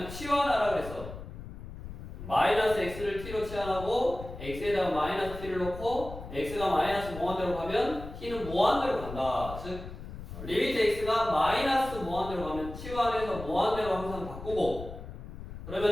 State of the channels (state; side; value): noise; left; rumble, 11 dB below the sound